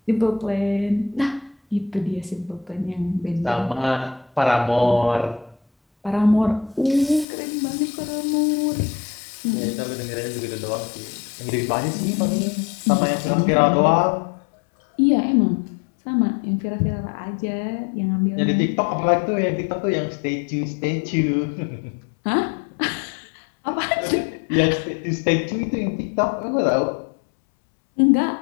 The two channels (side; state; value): right; drops out; at 7.2 s